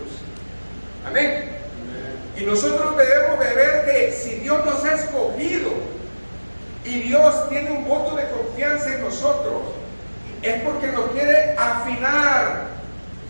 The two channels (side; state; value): both; inverted; correlation -1.00